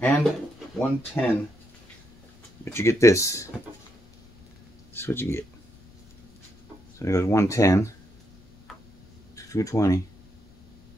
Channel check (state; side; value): noise; left; rumble, 27 dB below the sound